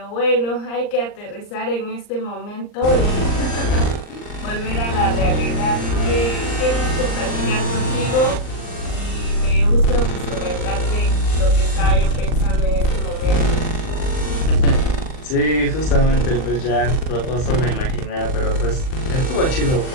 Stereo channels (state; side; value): late; right; 39 ms